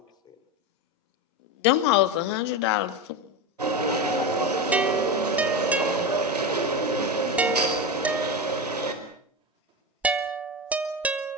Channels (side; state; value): both; normal; correlation 0.19